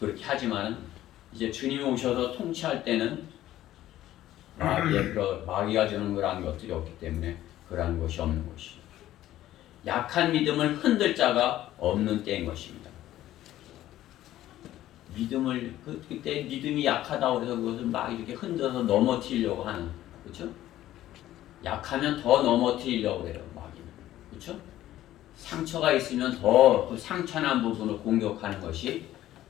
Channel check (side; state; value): right; quieter; 13.8 dB